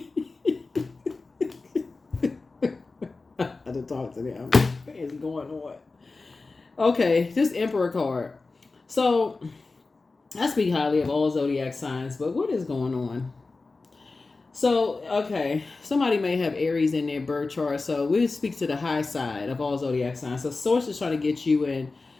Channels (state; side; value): quieter; right; 3.7 dB